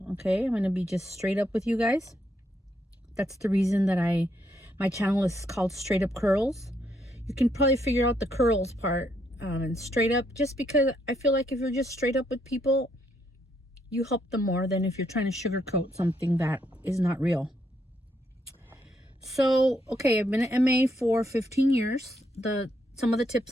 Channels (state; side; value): normal; both; correlation 0.75